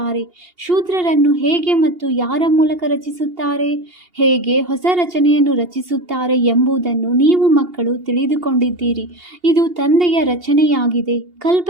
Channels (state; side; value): late; left; 2.8 ms